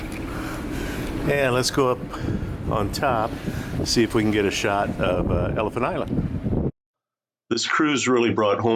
And let's go up on top, see if we can get a shot of Elephant Island. This cruise really brought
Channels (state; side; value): identical; both; correlation 1.00